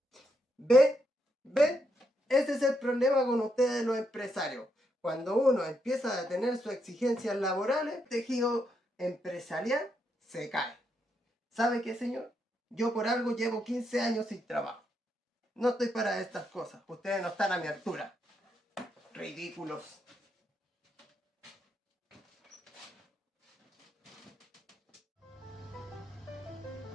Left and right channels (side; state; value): both; normal; correlation 0.80